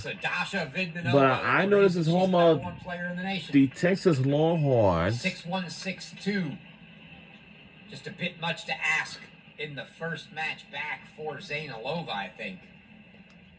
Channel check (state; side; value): identical; both; correlation 1.00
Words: Dasha Vidmanova, But I know this is home of player in the nation. the Texas Longhorns. 6-1, 6-2. Just a bit much to ask in the first match back for Zainalova, I think.